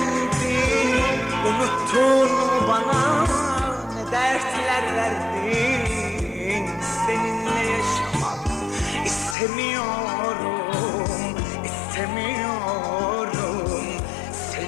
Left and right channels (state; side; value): drops out; right; at 9.3 s